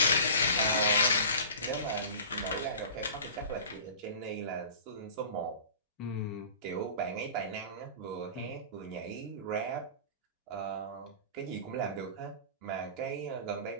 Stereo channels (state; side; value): inverted; both; correlation -0.38